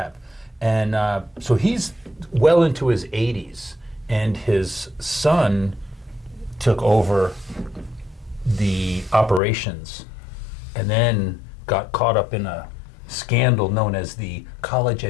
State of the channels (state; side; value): drops out; right; at 9.4 s